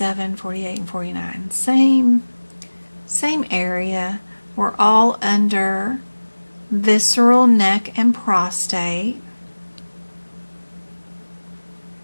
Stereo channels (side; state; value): both; inverted; correlation -1.00